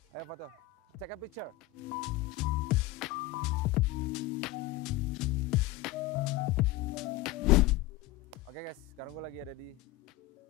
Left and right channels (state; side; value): quieter; right; 15.7 dB